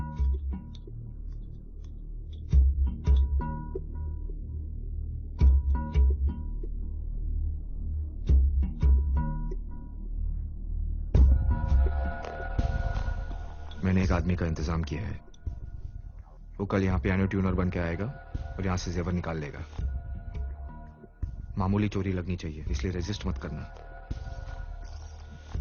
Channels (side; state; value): both; identical; correlation 1.00